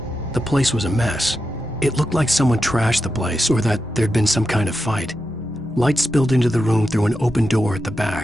The place was a mess. It looked like someone trashed the place or that there'd been some kind of fight. Light spilled into the room through an open door at the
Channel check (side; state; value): both; normal; correlation 0.88